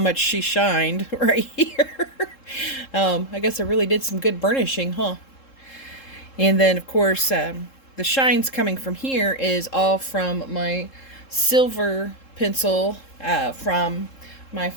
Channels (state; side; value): late; right; 3.7 ms